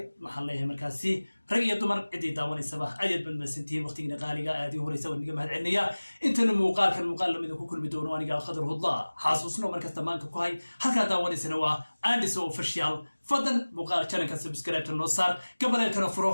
محل ليه مركزي رجع دمر عدي داون الصباح أجد بالمسنتين وقت نقالي هذه هو يسوي نجمة هالعنية أنت المقال كان مقال لما إذا كل بدون وأنا قال خضره الله حاسوسنا مركز تمان كوهاي هكذا داون سنوا عندي سو فشيال فضل مقال كان كسبسكرايب النصار قبل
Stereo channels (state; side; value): inverted; both; correlation -1.00